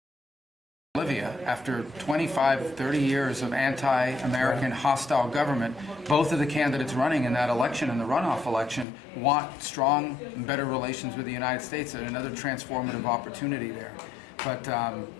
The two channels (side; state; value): right; drops out; at 8.8 s